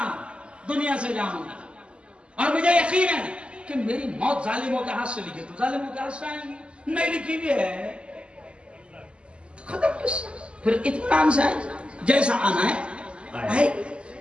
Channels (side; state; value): left; late; 0.054 ms